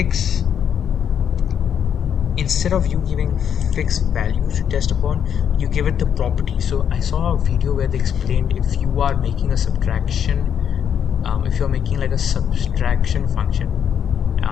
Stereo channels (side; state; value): right; quieter; 8.5 dB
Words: instead of you giving fixed values to test upon, you give it the property. So I saw a video where they explained if you are making a subtraction, if you're making like a subtraction function,